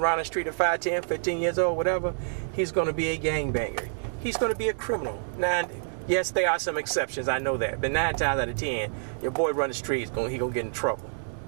the street at 5, 10, 15 years old, whatever, he's going to be a gangbanger. He's going to be a criminal. Now, yes, there are some exceptions, I know that. But 9 times out of 10, your boy run the street, he's going to get in trouble.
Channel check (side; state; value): left; silent; digital silence